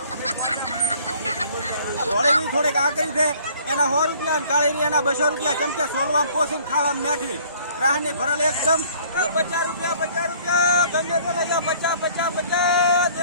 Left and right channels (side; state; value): both; inverted; correlation -0.55